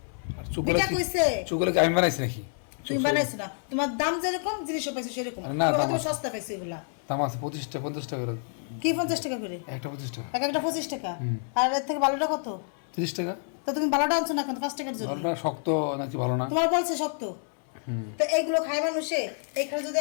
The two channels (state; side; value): silent; right; 59 dB below the other